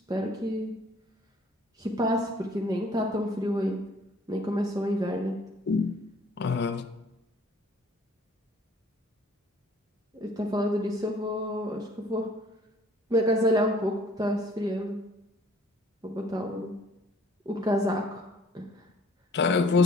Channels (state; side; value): normal; both; correlation 0.56